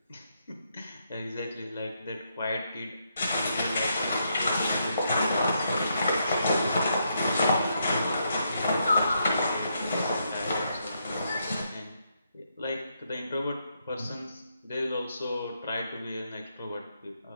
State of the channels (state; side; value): inverted; both; correlation -0.78